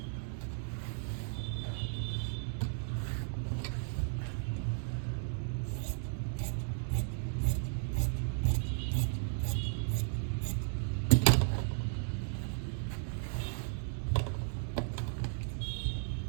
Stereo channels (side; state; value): left; silent; digital silence